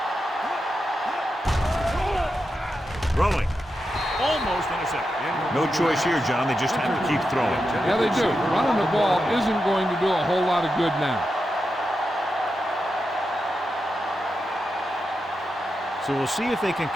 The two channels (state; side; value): normal; both; correlation 0.88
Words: Throwing. Almost intercepted. No choice here, John. They just have to keep throwing. Yeah, they do. Running the ball isn't going to do a whole lot of good now. So we'll see if they can